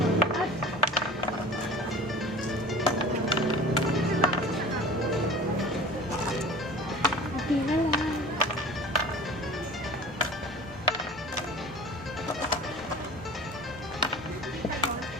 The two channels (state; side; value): noise; right; rumble, 23 dB below the sound